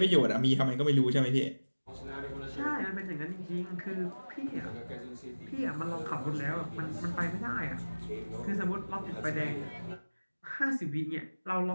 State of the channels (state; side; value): inverted; both; correlation -1.00